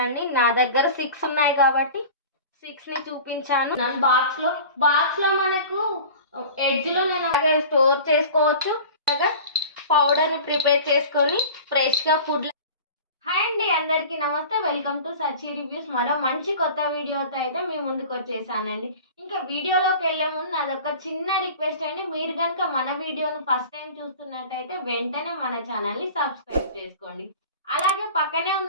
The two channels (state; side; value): inverted; both; correlation -0.39